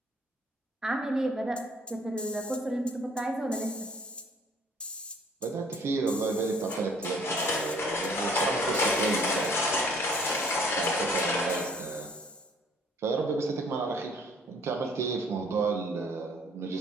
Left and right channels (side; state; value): both; normal; correlation 0.59